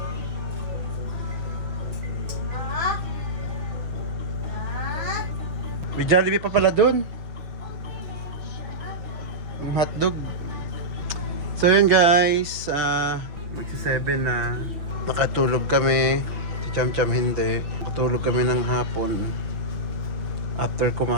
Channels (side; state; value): left; late; 6.1 ms